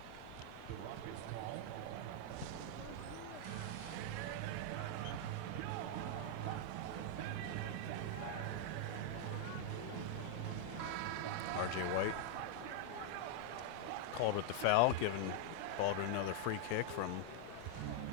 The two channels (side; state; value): both; different; correlation 0.00